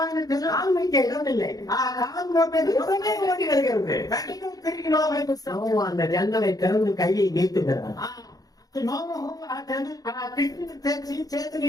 கால் வைக்க இடமில்லை. ఆ కాలు మోపేది உடனே ஓடி வருகிறது. వెంటనే తిరిగి లోపలికి వస్తాం. நோவா அந்த ஜன்னலை திறந்து கையை நீட்டுகிறார். నోము ఆ కిటికీని తెరిచి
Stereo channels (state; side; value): late; right; 0.18 ms